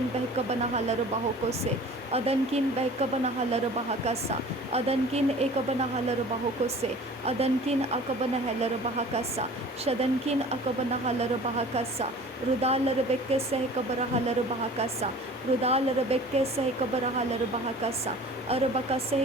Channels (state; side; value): normal; both; correlation 0.44